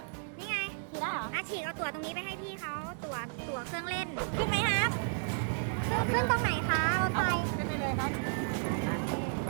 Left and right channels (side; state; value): left; silent; digital silence